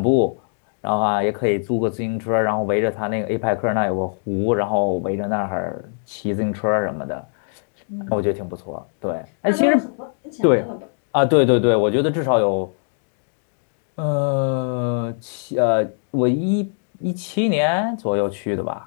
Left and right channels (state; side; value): silent; right; 64 dB below the other